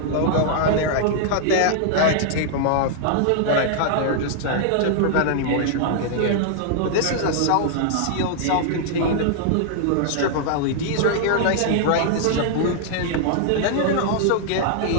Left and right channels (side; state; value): both; different; correlation -0.01